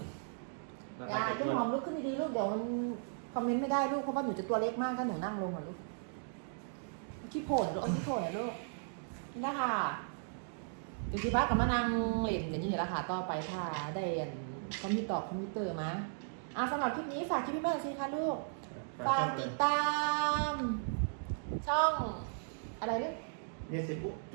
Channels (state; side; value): silent; left; digital silence